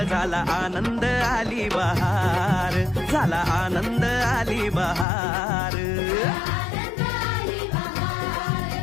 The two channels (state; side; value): drops out; right; at 5.1 s